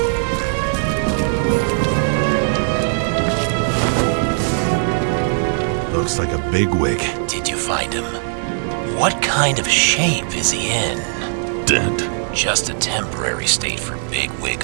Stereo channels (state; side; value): silent; left; digital silence